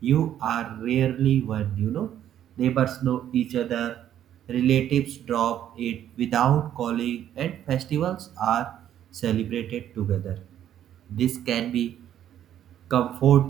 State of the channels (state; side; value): quieter; left; 10.9 dB